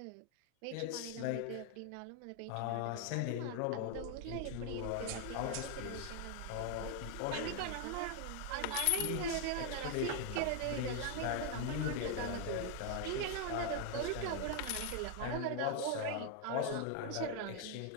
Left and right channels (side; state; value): both; different; correlation 0.00